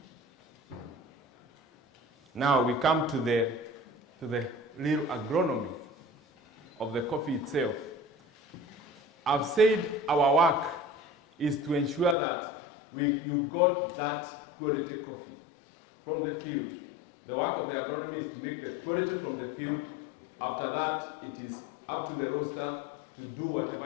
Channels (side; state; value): right; drops out; at 12.2 s